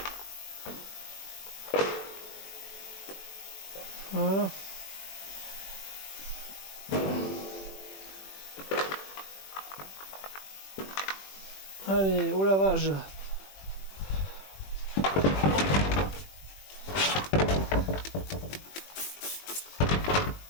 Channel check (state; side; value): late; right; 21 ms